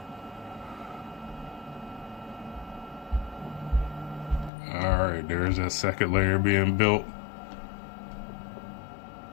Alright, there's that second layer being built.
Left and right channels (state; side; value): drops out; right; at 4.5 s